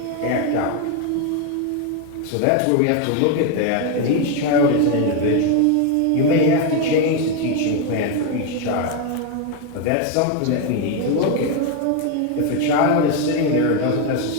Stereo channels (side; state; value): both; different; correlation 0.01